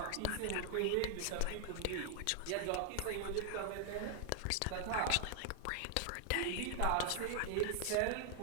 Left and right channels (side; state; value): both; different; correlation 0.00